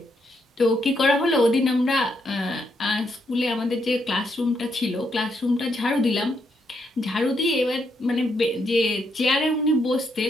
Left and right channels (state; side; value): normal; both; correlation 0.78